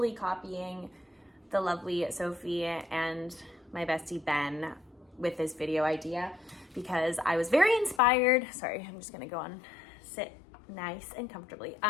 copying the lovely Sophie and my bestie Ben with this video idea because I was very inspired. Sorry, I'm just gonna go on, sit nice and comfortably.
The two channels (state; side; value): drops out; right; at 8.0 s